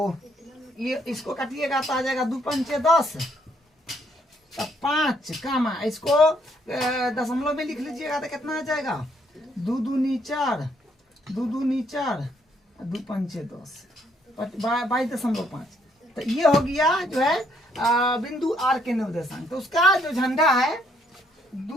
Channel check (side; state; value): both; normal; correlation 0.70